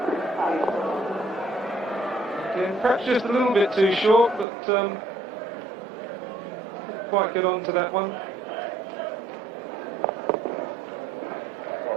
Again, perhaps just a little bit too short, but didn't quite get on to that one.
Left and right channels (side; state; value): left; drops out; at 4.5 s